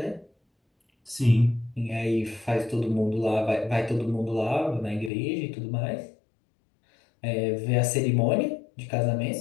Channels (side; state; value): right; drops out; at 5.1 s